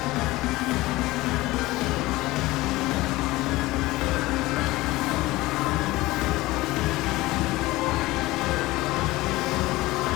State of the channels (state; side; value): quieter; right; 19.3 dB